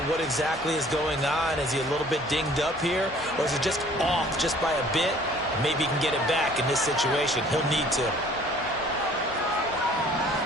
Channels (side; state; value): both; normal; correlation 0.54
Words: what exactly is going on. Is he a little bit dinged up here, or is it just off just by a bit? Maybe he can get it back in this situation. He'll need to.